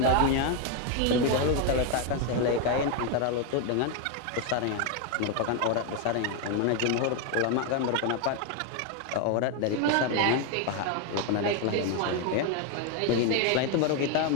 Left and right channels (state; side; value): different; both; correlation 0.01